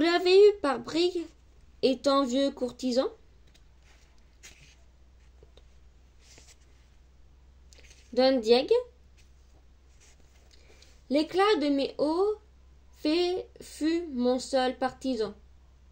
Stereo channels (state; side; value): identical; both; correlation 1.00